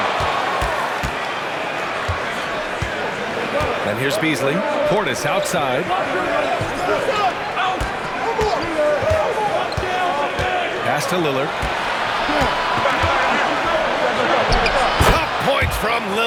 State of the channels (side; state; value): both; identical; correlation 1.00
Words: And here's Beasley. Portis outside. Pass to Lillard. Tough points from